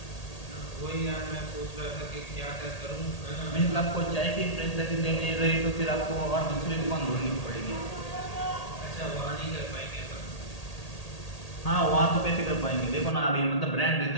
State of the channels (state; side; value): late; right; 1.8 ms